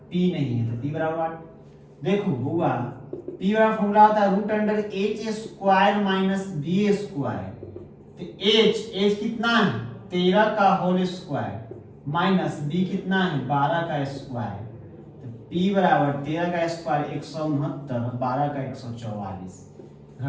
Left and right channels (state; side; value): identical; both; correlation 1.00